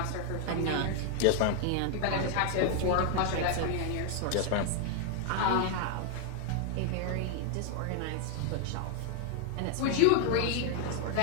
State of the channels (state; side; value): different; both; correlation 0.00